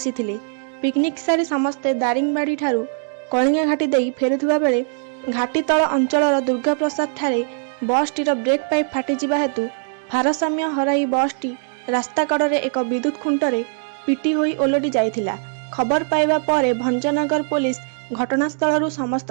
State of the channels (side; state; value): left; silent; 64 dB below the other